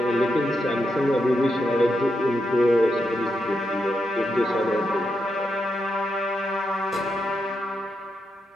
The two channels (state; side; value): normal; both; correlation 0.84